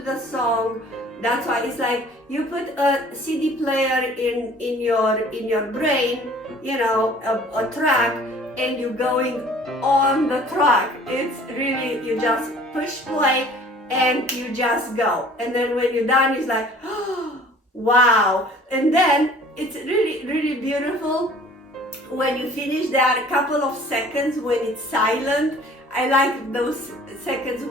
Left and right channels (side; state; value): both; normal; correlation 0.51